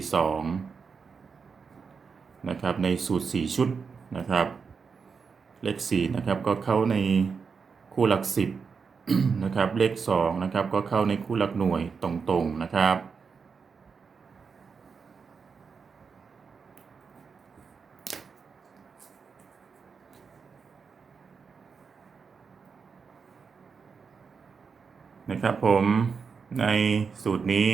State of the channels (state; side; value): quieter; left; 5.5 dB